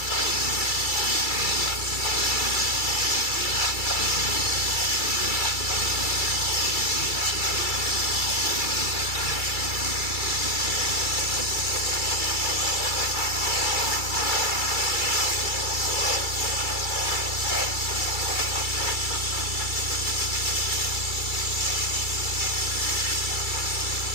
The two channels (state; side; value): late; right; 2.3 ms